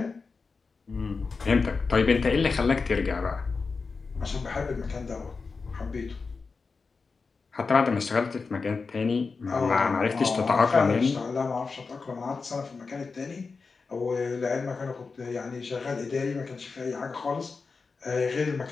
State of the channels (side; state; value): right; quieter; 4.6 dB